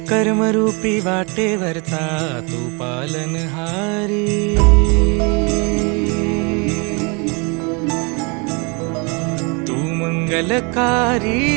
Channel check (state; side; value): quieter; left; 32.2 dB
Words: कर्मरूपी वाटेवरचा तू पालनहारी। तू मंगलकारी